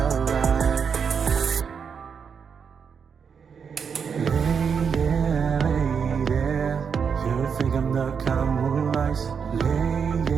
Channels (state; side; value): quieter; left; 6.5 dB